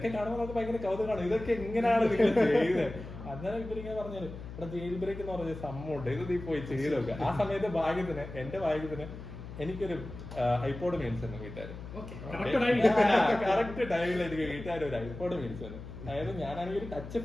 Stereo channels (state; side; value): noise; left; hum, 12 dB below the sound